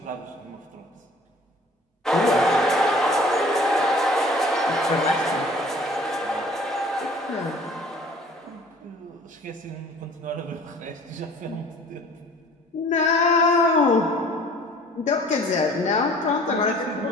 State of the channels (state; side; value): normal; both; correlation 0.50